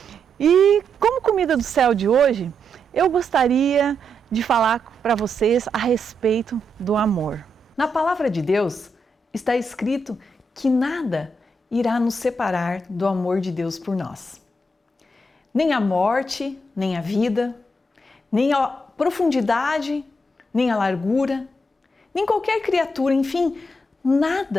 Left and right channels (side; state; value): both; normal; correlation 0.81